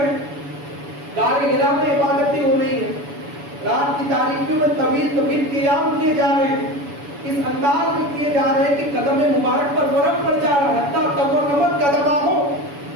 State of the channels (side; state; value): left; late; 7.0 ms